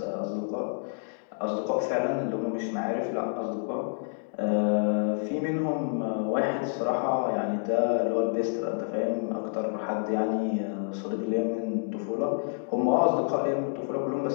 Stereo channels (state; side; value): silent; right; digital silence